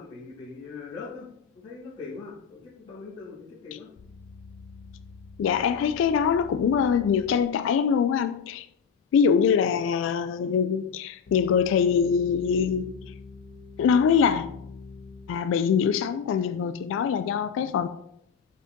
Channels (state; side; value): quieter; right; 6.6 dB